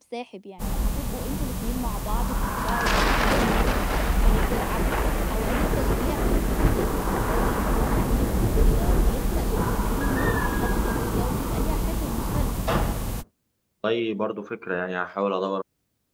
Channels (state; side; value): identical; both; correlation 1.00